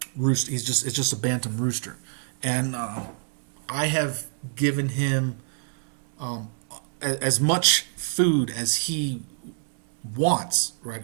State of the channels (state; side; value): silent; left; 60 dB below the other